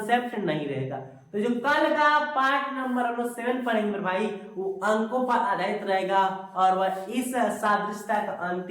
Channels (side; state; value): both; identical; correlation 1.00